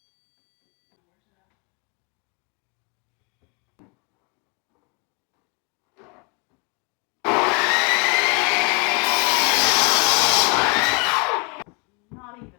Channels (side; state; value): right; quieter; 32.1 dB